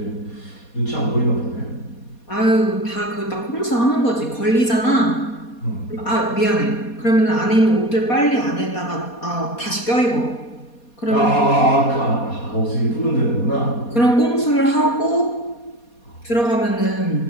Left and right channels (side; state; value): right; late; 4.2 ms